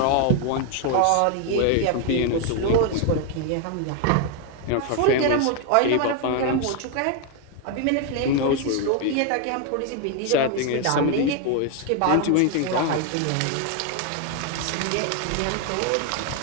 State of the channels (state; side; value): different; both; correlation 0.01